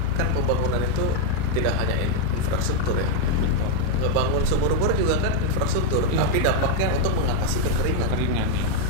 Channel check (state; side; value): different; both; correlation 0.00